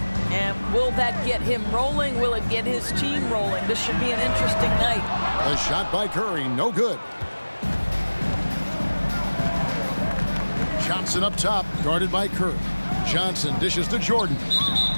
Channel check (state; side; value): inverted; both; correlation -1.00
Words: And will that get him rolling? Will it get his team rolling? This should be an interesting night. A shot by Curry, no good. Johnson up top, guarded by Curry. Johnson dishes to Jordan.